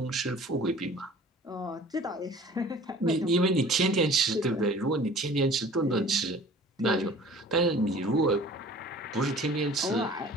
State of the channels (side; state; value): both; normal; correlation 0.47